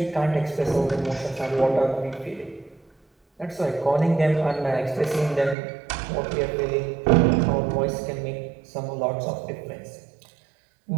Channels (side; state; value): left; drops out; at 5.6 s